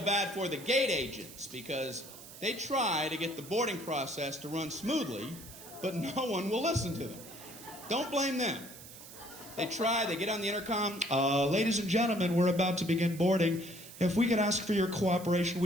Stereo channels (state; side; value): noise; right; hiss, 16 dB below the sound